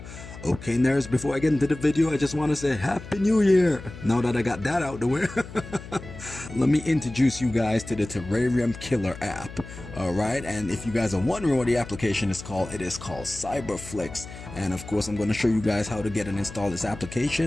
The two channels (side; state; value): left; noise; hum, 14 dB below the sound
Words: Okay, nerds, before I get into the video, I just want to say Happy New Year! Now that I got that out the way, let me introduce you guys to the Terrarium Killer app. Alright, and if you guys are wondering what the application is called, it is called cyberflix. And of course, I'm going to show you guys how to get and install this